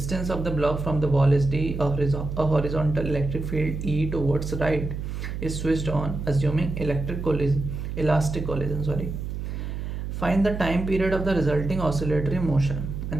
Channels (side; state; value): right; noise; hum, 5 dB below the sound